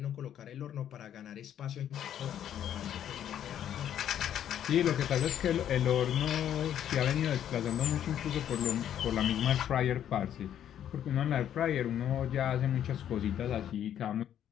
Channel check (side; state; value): right; quieter; 10.2 dB